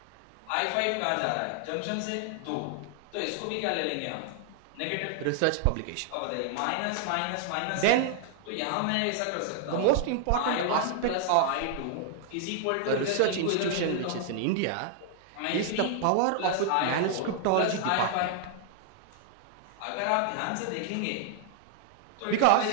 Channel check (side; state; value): both; different; correlation 0.00